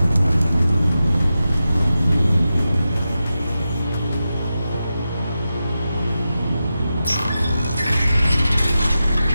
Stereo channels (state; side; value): inverted; both; correlation -0.91